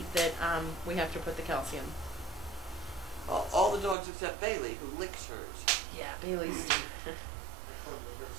that we have to put the calcium. All the dogs except Bailey, who licks hers. Yeah, Bailey's.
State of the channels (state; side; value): drops out; left; at 4.0 s